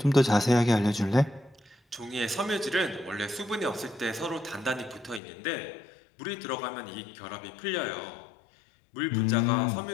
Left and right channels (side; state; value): right; drops out; at 5.2 s